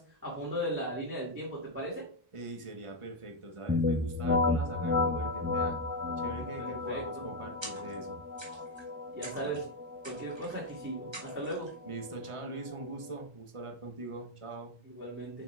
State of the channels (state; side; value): late; left; 1.3 ms